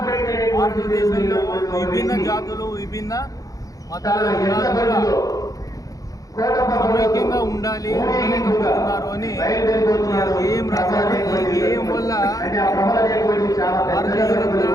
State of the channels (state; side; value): late; right; 0.17 ms